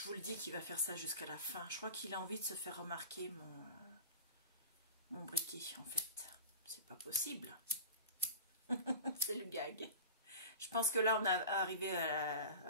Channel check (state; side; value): inverted; both; correlation -0.34